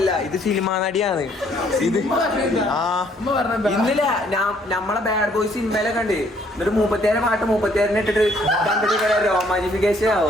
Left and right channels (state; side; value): normal; both; correlation 0.65